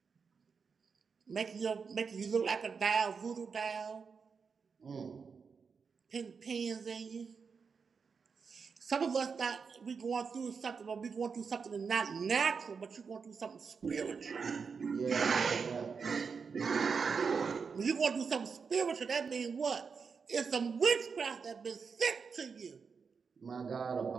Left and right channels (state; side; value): quieter; left; 5.6 dB